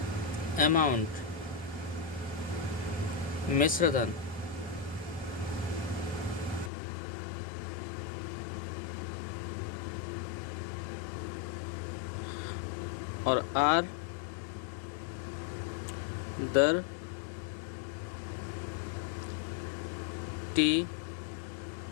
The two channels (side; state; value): right; drops out; at 6.7 s